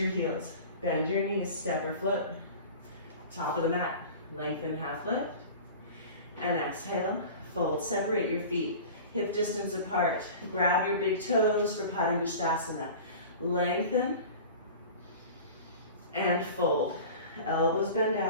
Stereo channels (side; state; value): both; inverted; correlation -0.38